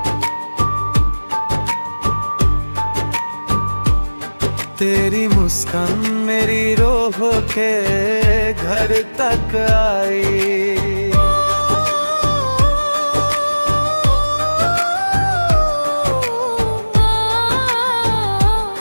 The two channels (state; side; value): inverted; both; correlation -1.00